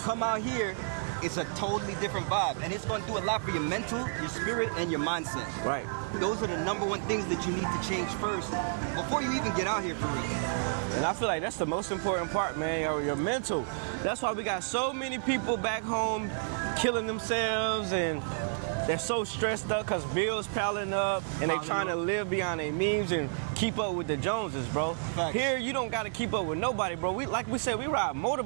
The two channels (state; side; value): silent; left; digital silence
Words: come out here, it's a totally different vibe. And it's gonna do a lot for your mental, your spirit, and your mindset. Right. Those are the #1 things that you need to change first before you even get out here for real. And I feel like that's the most important part, man, your mental. That's why we got so many people back home killing themselves, and they're so stressed up because bills piling up, and they're trying to live beyond their means and keep up with the Joneses, bro. Facts. Here, you don't got to keep up with nobody, bro. Like we said, we ride